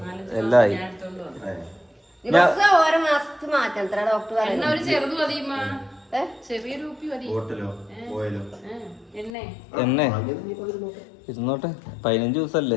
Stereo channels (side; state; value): right; drops out; at 9.3 s